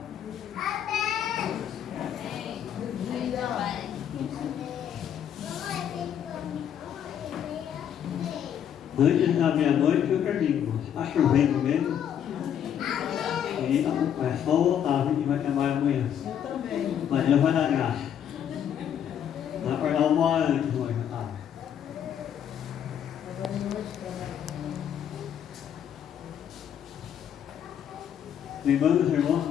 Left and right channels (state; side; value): quieter; right; 9.2 dB